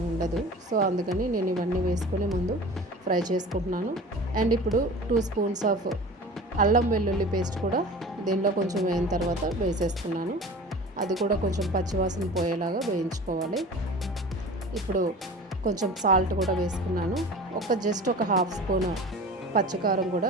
ఉండదు. సో అందుకని నేను ఇవన్నీ వేసుకొని ముందు ఫ్రై చేసుకుంటున్నాను. అండ్ ఇప్పుడు 2 స్పూన్స్ ఆఫ్ అల్లం వెల్లుల్లి పేస్ట్ కూడా దీనిలో కొంచెం వేయిన తర్వాత వేసేస్తున్నాను. అది కూడా కొంచెం పచ్చివాసన పోయేలాగా వేయించుకోవాలి. ఇప్పుడు కొంచెం సాల్ట్ కూడా వేసుకున్నాను. జస్ట్ ఒక 1/2 స్పూన్ పచ్చికారం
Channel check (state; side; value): normal; both; correlation 0.38